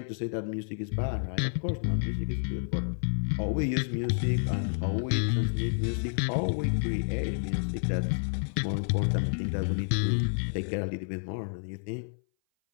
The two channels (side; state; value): right; silent; 58 dB below the other